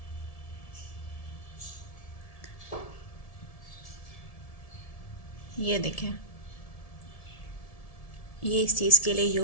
ये देखें, ये इस चीज़ के लिए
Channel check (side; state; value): right; late; 1.7 ms